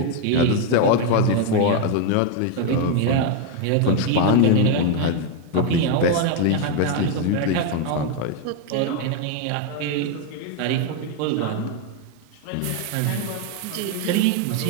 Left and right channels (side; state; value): both; different; correlation 0.01